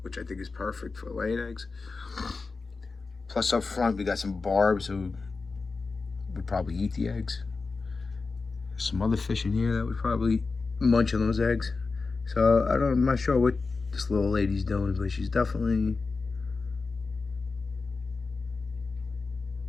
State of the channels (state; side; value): quieter; right; 4.2 dB